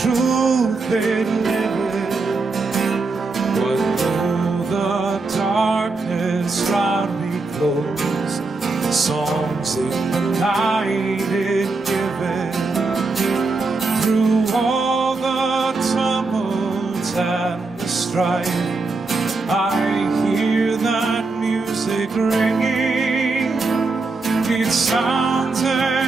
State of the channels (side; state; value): left; quieter; 3.7 dB